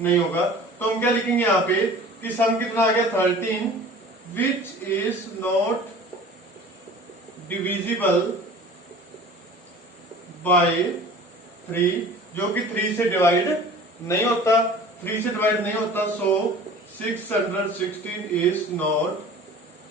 होगा। तो हम क्या लिखेंगे यहाँ पे कि सम कितना आ गया 13, which is not divisible by 3, जो कि 3 से डिवाइड नहीं होता। 3 से डिवाइड नहीं होता, सो 616 इज नॉट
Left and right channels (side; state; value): both; normal; correlation 0.43